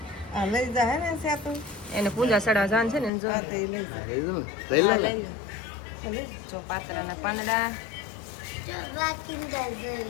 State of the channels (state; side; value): drops out; right; at 3.1 s